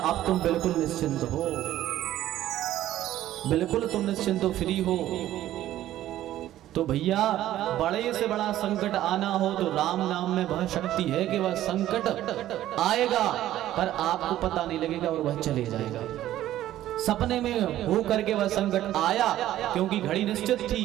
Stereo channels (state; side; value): quieter; left; 13.4 dB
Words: अब तुम बिल्कुल निश्चिंत हो, बिल्कुल तुम निश्चिंत हो, फ्री हो। तो भैया बड़े से बड़ा संकट आना हो तो राम नाम में वह शक्ति है कि वह संकट आएगा पर आपको पता नहीं लगेगा और वह चले जाएगा। सपने में हो करके वह संकट आया क्योंकि घड़ी निश्चित थी,